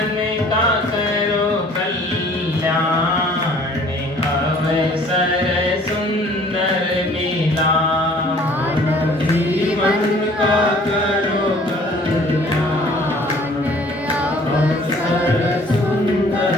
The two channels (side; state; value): both; normal; correlation 0.53